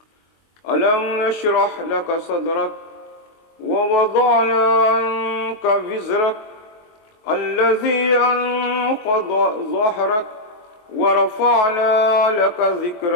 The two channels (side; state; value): right; late; 23 ms